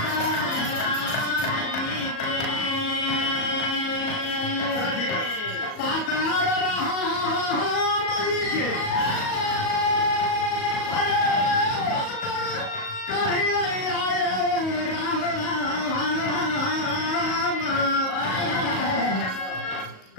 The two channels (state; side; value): late; right; 38 ms